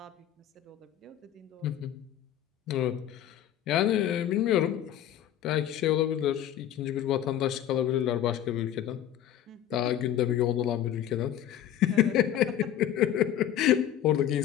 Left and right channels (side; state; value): right; quieter; 11.2 dB